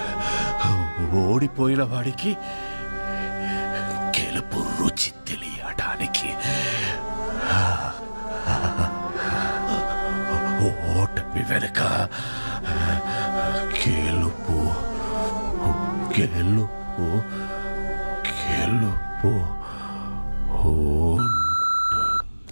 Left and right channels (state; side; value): inverted; both; correlation -1.00